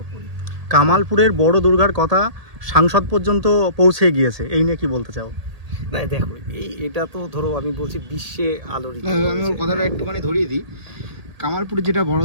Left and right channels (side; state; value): left; late; 1.8 ms